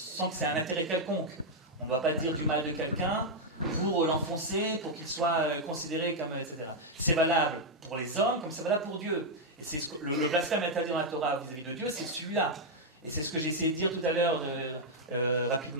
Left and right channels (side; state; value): both; normal; correlation -0.01